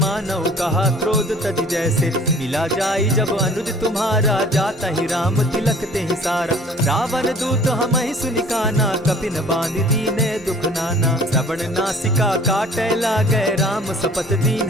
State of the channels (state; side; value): normal; both; correlation 0.50